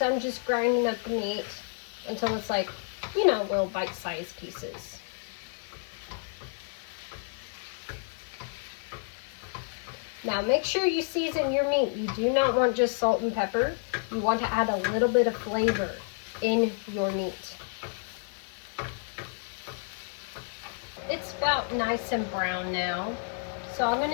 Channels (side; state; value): right; silent; 58 dB below the other